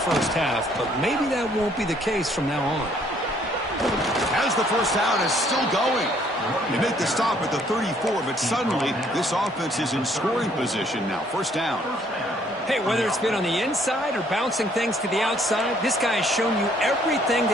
half, but maybe that won't be the case from now on. As the first down is still going. They make the stop at the 34, but suddenly this offense is in scoring position now. First down. Hey, whether it's been on the inside or bouncing things to the outside, this guy has shown you everything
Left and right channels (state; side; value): normal; both; correlation 0.64